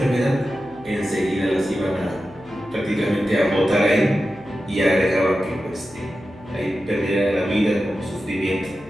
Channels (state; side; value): noise; left; hum, 25 dB below the sound